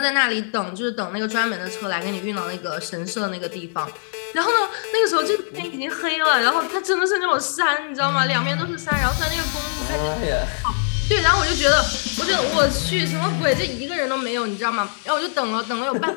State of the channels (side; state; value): right; silent; digital silence